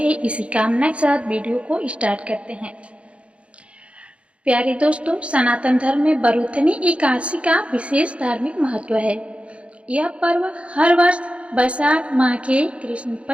इसी कामना के साथ वीडियो को स्टार्ट करते हैं। प्यारे दोस्तों, सनातन धर्म में बरूथनी एकादशी का विशेष धार्मिक महत्व है। यह पर्व हर वर्ष वैशाख माह के कृष्ण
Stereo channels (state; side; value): late; left; 0.061 ms